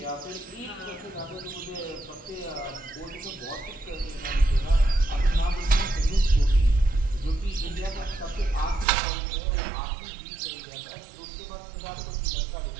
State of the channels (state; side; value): drops out; left; at 8.8 s